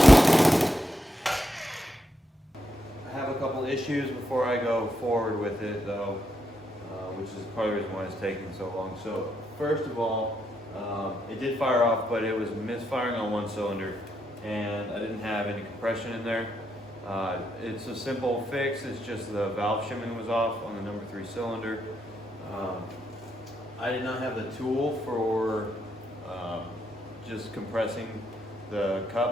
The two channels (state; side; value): normal; both; correlation 0.80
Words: I have a couple issues before I go forward with it though, which is part of the reason why it's taking so long. So first of all, it did fire off, but it was misfiring on one cylinder and I didn't have any compression in there. It's a simple fix. It's just the valve shimming was off on the number 3 cylinder. I did not have the tool for just compressing the